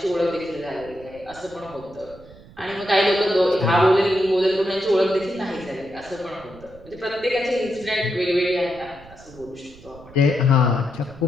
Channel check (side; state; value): right; noise; rumble, 21 dB below the sound